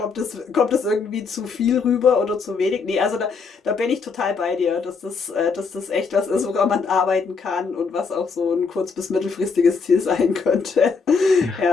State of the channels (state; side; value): quieter; right; 5.1 dB